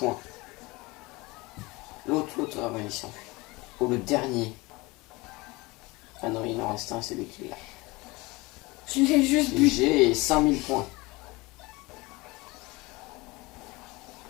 L'autre, ah ouais, il s'enfuit. Oh, le dernier. Ah non, il en reste un, c'est lui qui l'a. Je l'ai juste bu. J'ai 5000 points.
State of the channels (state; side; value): quieter; right; 23.2 dB